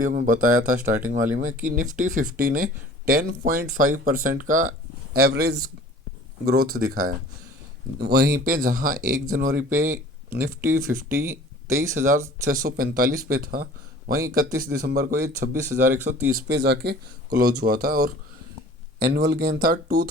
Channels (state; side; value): normal; both; correlation 0.47